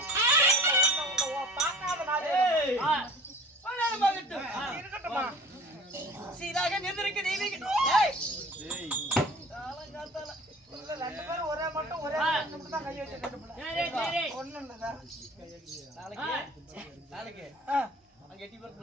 சீராக நின்றிருக்க தெய்வீக ரெண்டு பேரும் ஒரே மட்டும் ஒரே தான் கை வச்சு ஒண்ணு நாளைக்கு அங்க எட்டி பேர்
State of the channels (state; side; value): normal; both; correlation 0.45